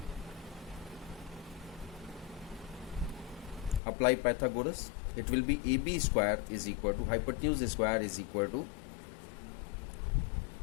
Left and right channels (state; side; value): drops out; right; at 3.8 s